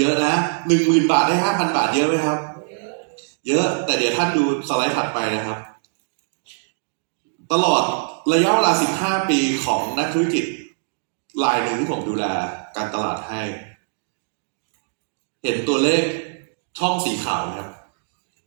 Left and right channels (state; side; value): silent; left; digital silence